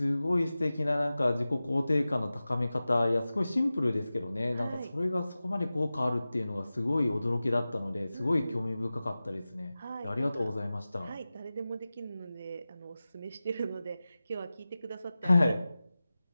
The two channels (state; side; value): inverted; both; correlation -0.96